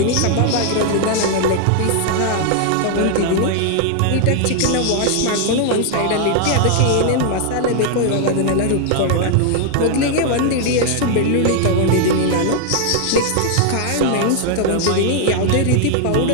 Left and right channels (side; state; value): both; different; correlation 0.00